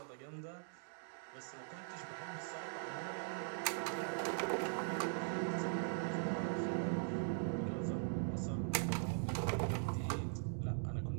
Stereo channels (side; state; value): left; silent; digital silence